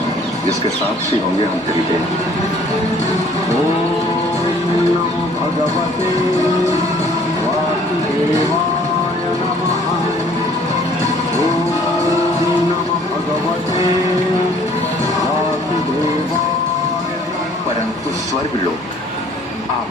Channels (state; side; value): normal; both; correlation 0.57